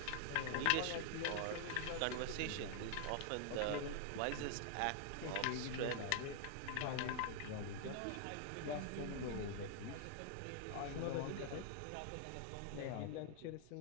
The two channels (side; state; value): both; different; correlation 0.00